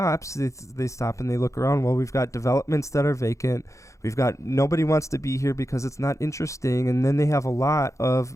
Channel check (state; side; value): late; right; 0.15 ms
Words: they stop and they look around. Well, we've got developments that are vacant, we've got nobody wants to be here because it's not interesting, and then they have a lot